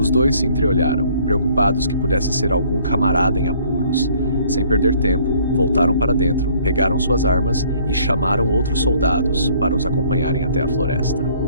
dois se entreolharam, preocupados que pudesse ser algum camarada em apuros. Sem perder tempo, voltaram para dentro, pegaram suas armas e chamaram outros soldados para os acompanharem até a floresta.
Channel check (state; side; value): inverted; both; correlation -0.60